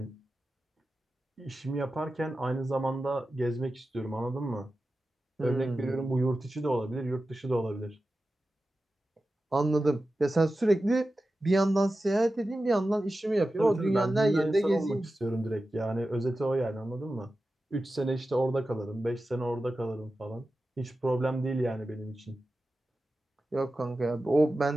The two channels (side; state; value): both; normal; correlation 0.93